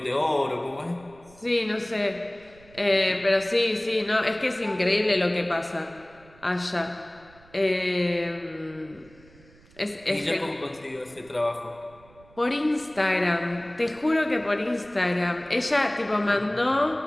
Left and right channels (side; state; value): right; noise; rumble, 26 dB below the sound